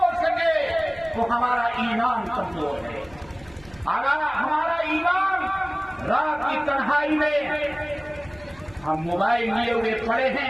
سکے تو ہمارا ایمان کمزور ہے. اگر ہمارا ایمان رات کی تنہائی میں ہم موبائل لیے ہوئے پڑے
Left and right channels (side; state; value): left; noise; hum, 24 dB below the sound